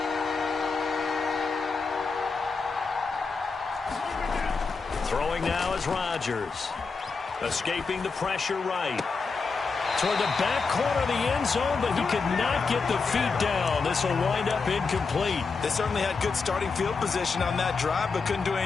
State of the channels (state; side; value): quieter; right; 4.7 dB